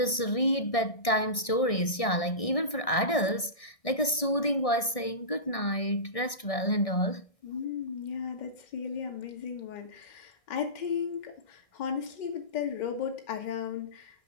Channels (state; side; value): late; right; 1.6 ms